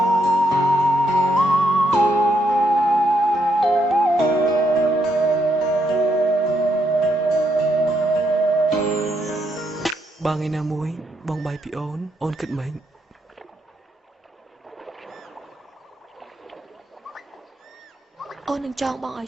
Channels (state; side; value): normal; both; correlation 0.78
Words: បើថ្ងៃណាមួយបងបាយពីអូនគិតម៉េចអូននឹងចង់បងឲ្